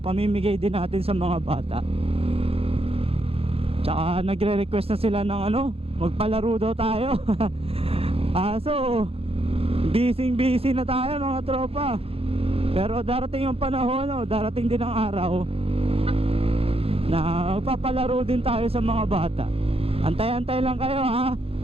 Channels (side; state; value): left; late; 0.28 ms